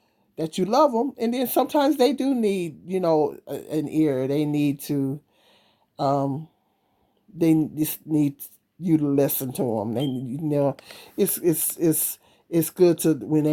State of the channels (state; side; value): identical; both; correlation 1.00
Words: that you love them. And then sometimes they do need, an ear. They need to, um, they just need you to listen to them. It's good to, when